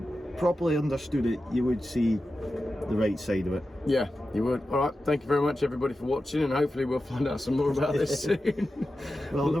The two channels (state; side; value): normal; both; correlation 0.92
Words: properly understood it, you would see the right side of it. Yeah, you would. All right. Thank you very much, everybody, for watching, and hopefully we'll find out some more about this soon. Well,